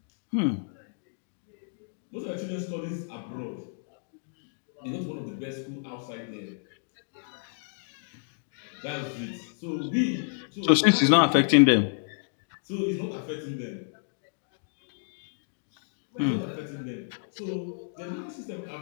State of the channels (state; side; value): silent; right; digital silence